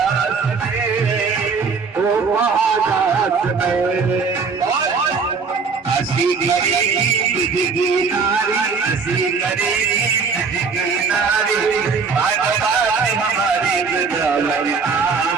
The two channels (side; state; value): left; quieter; 5.1 dB